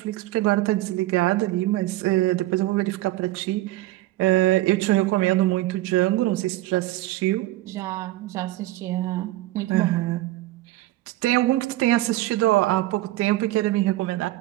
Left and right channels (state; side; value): quieter; left; 16.9 dB